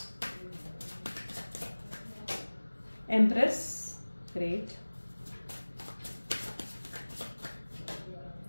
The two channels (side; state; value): both; inverted; correlation -1.00